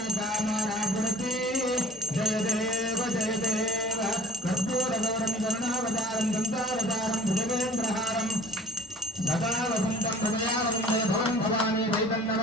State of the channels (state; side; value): normal; both; correlation 0.48